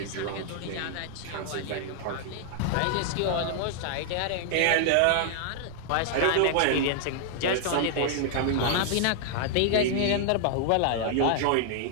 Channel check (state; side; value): different; both; correlation -0.01